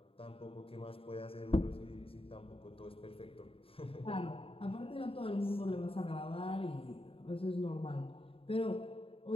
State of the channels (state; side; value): late; right; 0.27 ms